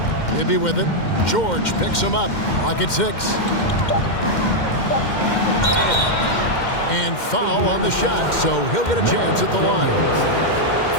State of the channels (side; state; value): right; late; 2.1 ms